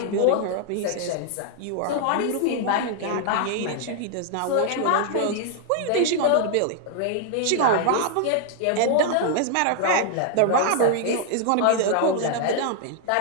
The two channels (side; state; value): both; different; correlation 0.00